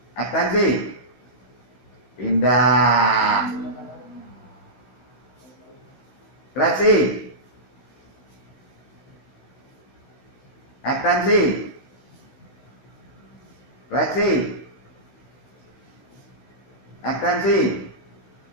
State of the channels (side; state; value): right; late; 16 ms